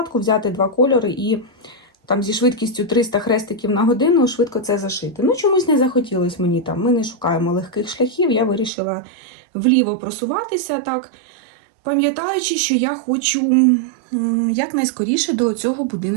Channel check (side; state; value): left; drops out; at 8.7 s